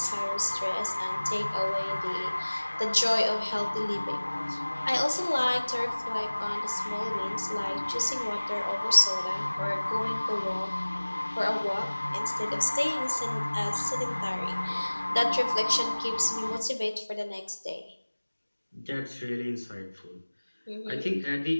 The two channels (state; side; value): inverted; both; correlation -1.00